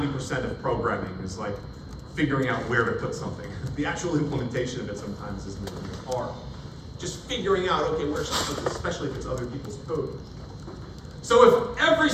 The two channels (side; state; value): both; identical; correlation 1.00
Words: of programming, is like figuring out where to put something. The actual implementation of it sometimes isn't hard. Just figuring out, okay, where should I put this, especially if it's other people's code. So if every